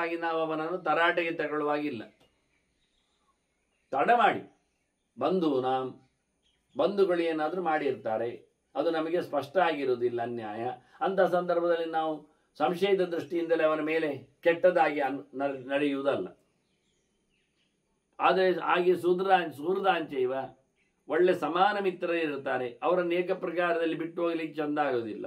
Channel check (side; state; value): both; identical; correlation 1.00